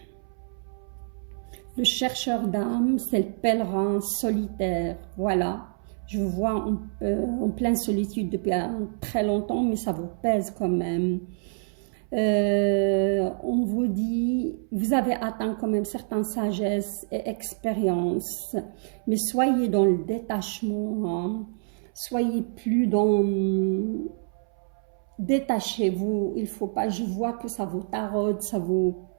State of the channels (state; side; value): silent; left; 60 dB below the other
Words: le chercheur d'âme, c'est le pèlerin solitaire. Voilà, je vous vois en pleine solitude depuis très longtemps, mais ça vous pèse quand même. On vous dit, vous avez atteint quand même certaines sagesses et expériences, mais soyez dans le détachement, soyez plus dans... Détachez-vous, il faut pas, je vois que ça vous taraude, ça vous